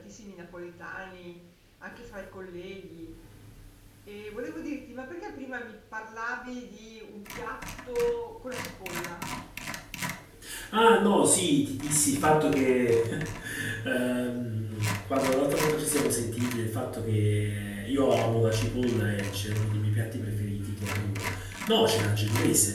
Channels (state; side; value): identical; both; correlation 1.00